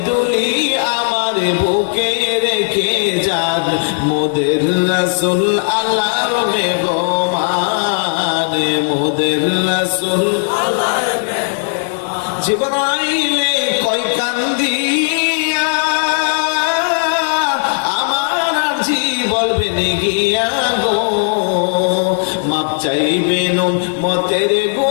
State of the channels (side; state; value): right; silent; digital silence